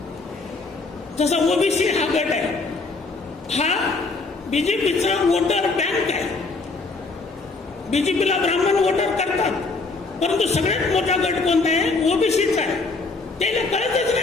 जसा ओबीसी हा गट आहे, हा बीजेपीचा वोटर बँक आहे. बीजेपीला ब्राह्मण वोटर करतात, परंतु सगळ्यात मोठा गट कोणता आहे, ओबीसीचा आहे. त्याला कळतच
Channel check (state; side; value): quieter; right; 3.8 dB